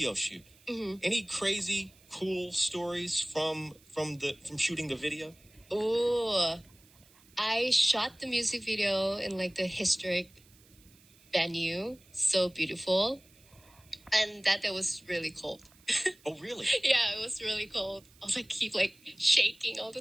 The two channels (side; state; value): right; noise; hiss, 28 dB below the sound